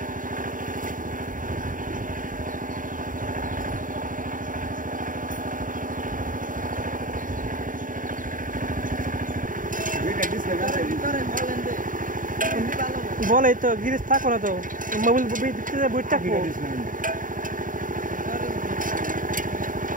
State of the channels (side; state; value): left; late; 0.39 ms